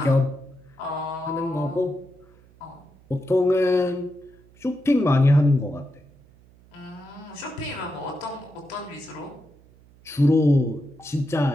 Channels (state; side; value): noise; right; hum, 27 dB below the sound